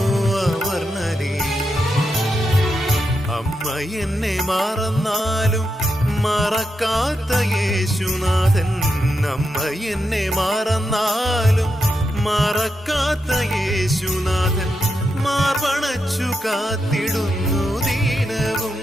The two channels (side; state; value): both; normal; correlation 0.85